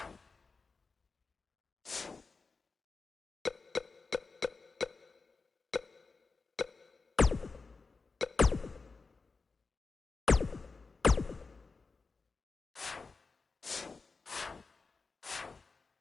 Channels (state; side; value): quieter; right; 4.3 dB